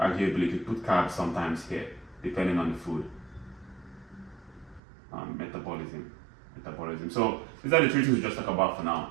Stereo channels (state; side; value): drops out; left; at 4.8 s